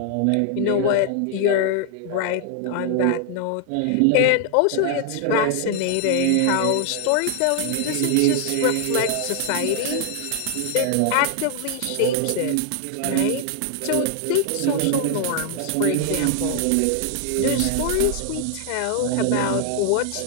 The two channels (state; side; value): different; both; correlation 0.00